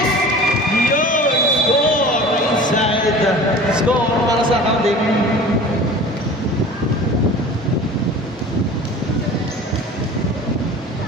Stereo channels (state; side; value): normal; both; correlation 0.40